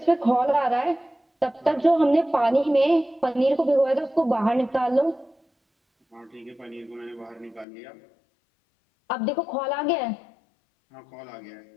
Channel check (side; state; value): right; drops out; at 7.7 s